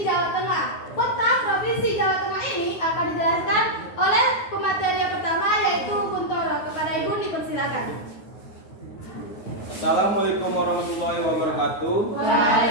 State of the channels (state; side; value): late; right; 9.4 ms